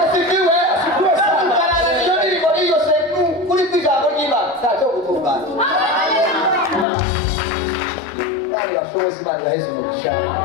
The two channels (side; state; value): right; drops out; at 6.9 s